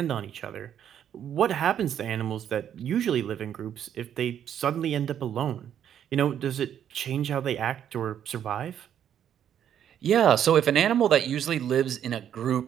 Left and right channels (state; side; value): quieter; left; 9.6 dB